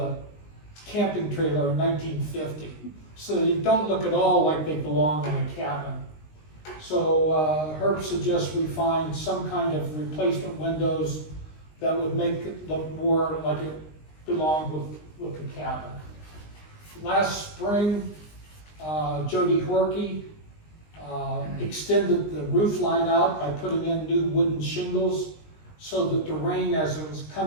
camping trailer in 1950. So they don't look at all like they belong in a cabin. So Herb suggests we find some kind of replacement windows that would make it look more like it belonged with the cabin. Last spring, Jody Horkey extended the roof line out by putting in new wooden shingles so that the rain, as it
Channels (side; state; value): right; late; 19 ms